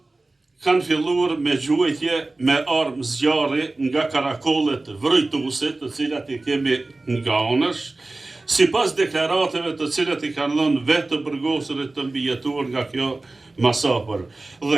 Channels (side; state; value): left; quieter; 3.1 dB